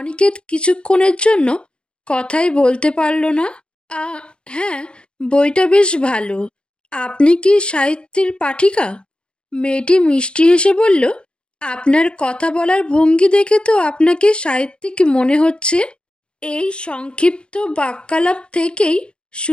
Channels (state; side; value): late; right; 0.052 ms